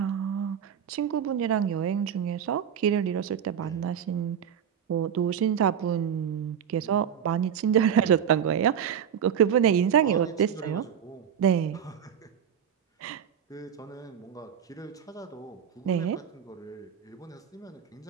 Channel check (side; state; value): left; quieter; 8.5 dB